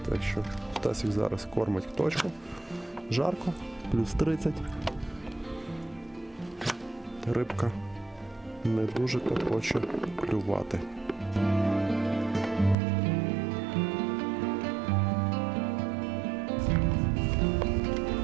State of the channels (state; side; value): drops out; left; at 12.8 s